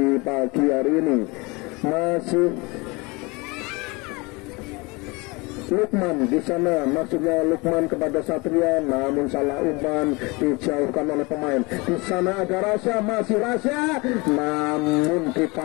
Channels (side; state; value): right; quieter; 26.1 dB